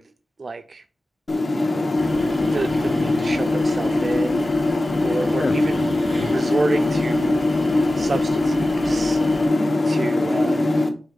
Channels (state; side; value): normal; both; correlation 0.95